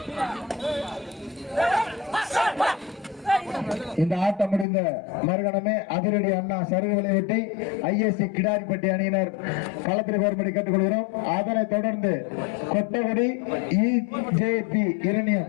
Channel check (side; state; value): right; drops out; at 4.7 s